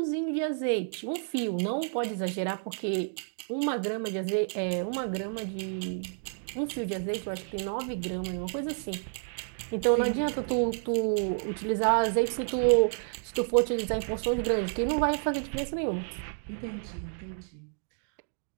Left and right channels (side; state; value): left; silent; digital silence